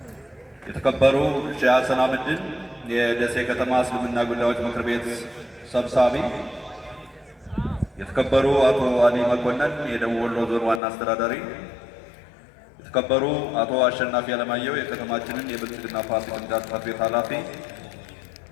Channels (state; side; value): drops out; right; at 10.8 s